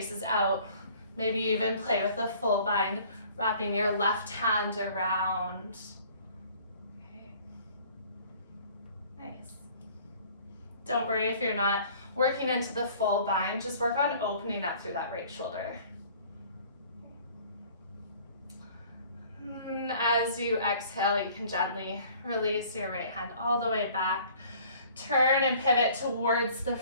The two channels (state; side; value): inverted; both; correlation -0.53